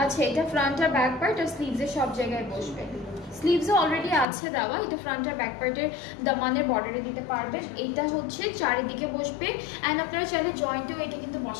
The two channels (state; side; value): drops out; right; at 4.2 s